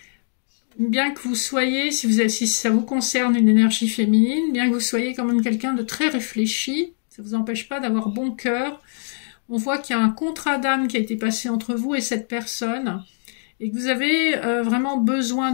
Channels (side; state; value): right; silent; 64 dB below the other